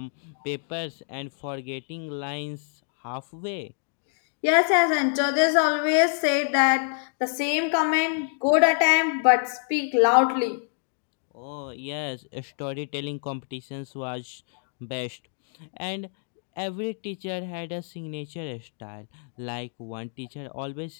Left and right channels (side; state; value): right; silent; digital silence